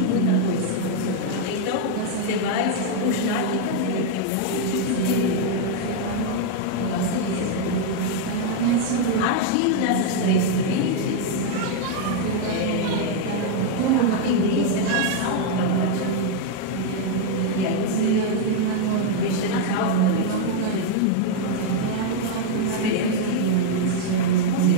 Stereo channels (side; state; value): both; different; correlation 0.00